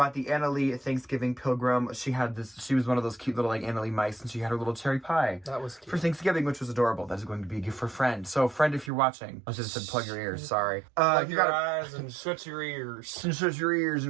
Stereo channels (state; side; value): drops out; left; at 8.9 s